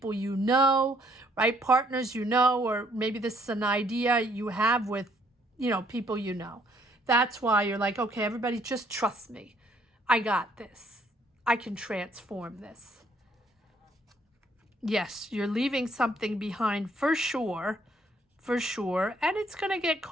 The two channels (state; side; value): normal; both; correlation 0.66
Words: you know, right? Partners you know, or maybe this is an idea you have with, people you know. That's why you're like, okay, everybody just trust me. I got this. I can transform this. Yes, you're leaving something behind for sure. For sure. And it's going to get